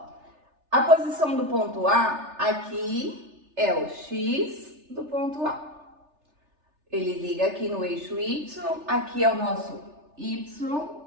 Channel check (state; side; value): late; left; 3.3 ms